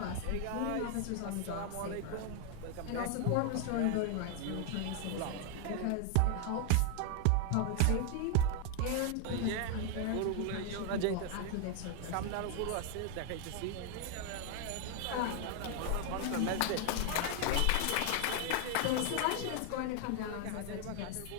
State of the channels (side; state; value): both; different; correlation 0.00